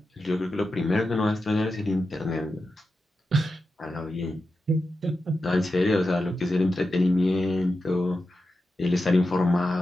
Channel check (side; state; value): both; normal; correlation 0.90